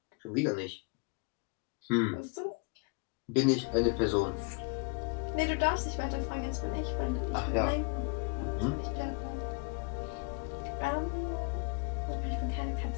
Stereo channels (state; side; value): quieter; right; 33.5 dB